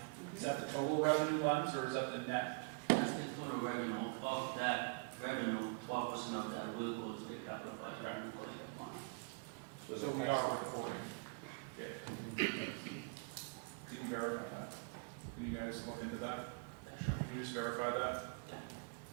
is that the total revenue lens, or is that the net? That's the total revenue. Of that revenue, 12% of that will go to the capital budget. So we are recording. Yeah. Can you verify that? Can you guys look into that? Can you just verify that? Yeah.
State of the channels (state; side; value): quieter; left; 34.3 dB